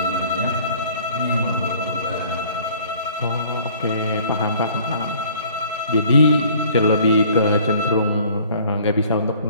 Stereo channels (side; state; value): both; inverted; correlation -0.54